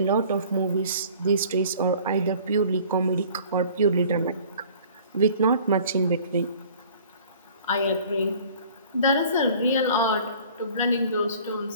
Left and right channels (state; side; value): inverted; both; correlation -0.50